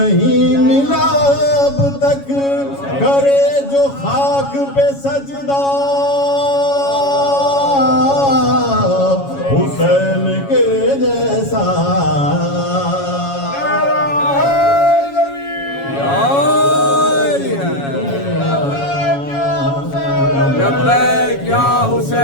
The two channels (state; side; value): late; right; 7.2 ms